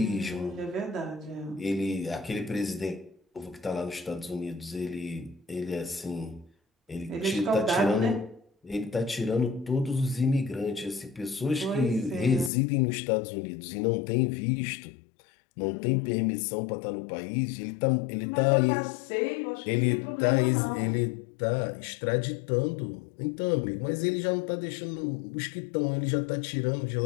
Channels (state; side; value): drops out; right; at 12.5 s